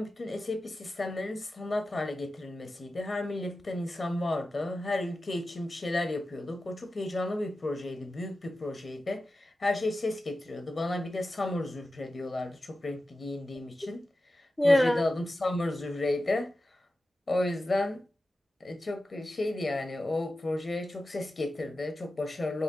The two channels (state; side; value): normal; both; correlation 0.93